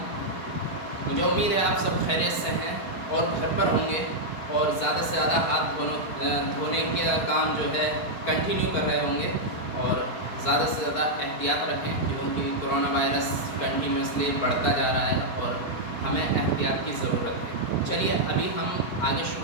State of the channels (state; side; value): late; right; 4.5 ms